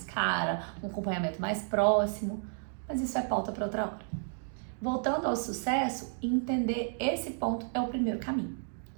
cara, um acompanhamento mais próximo, mas isso é pauta para outra hora. Voltando ao sucesso, entender esse ponto é o primeiro caminho.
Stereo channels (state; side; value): silent; left; 56 dB below the other